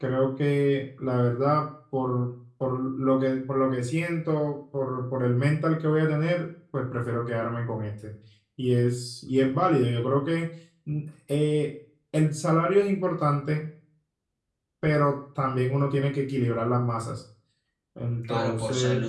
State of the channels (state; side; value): identical; both; correlation 1.00